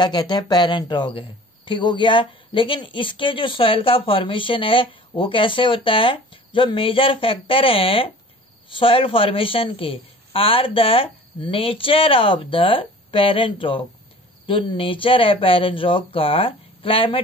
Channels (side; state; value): both; normal; correlation 0.45